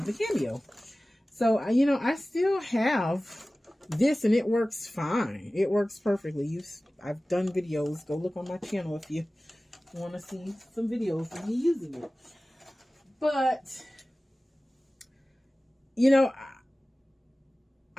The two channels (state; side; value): normal; both; correlation 0.97